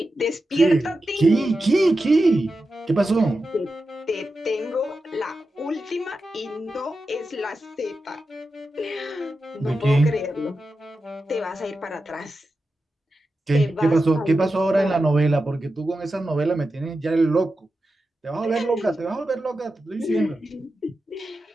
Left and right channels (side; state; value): both; normal; correlation 0.91